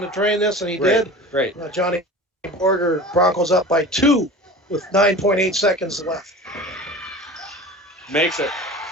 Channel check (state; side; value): normal; both; correlation 0.37